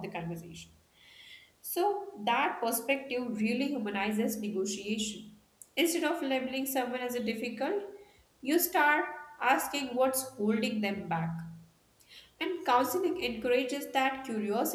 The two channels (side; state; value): both; identical; correlation 1.00